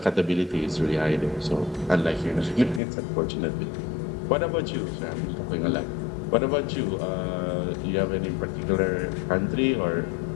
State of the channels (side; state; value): right; drops out; at 2.8 s